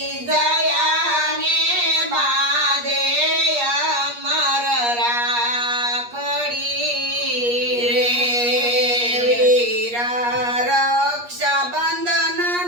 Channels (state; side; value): late; left; 8.4 ms